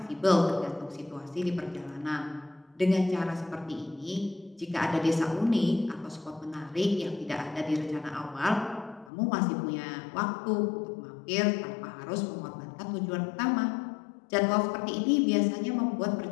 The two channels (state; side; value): drops out; right; at 9.1 s